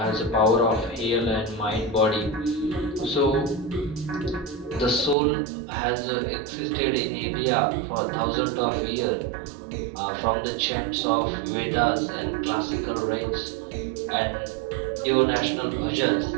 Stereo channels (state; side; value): drops out; left; at 5.2 s